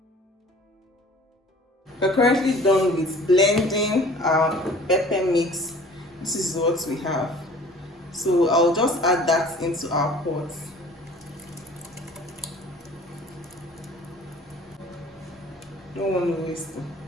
We're currently done with blending our pepper mix. This is what we have. So I'll just add that into our pot. Don't want to waste it.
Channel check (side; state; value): both; normal; correlation 0.48